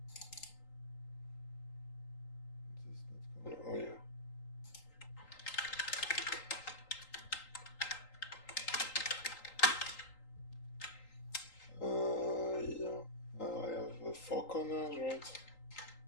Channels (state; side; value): late; right; 3.8 ms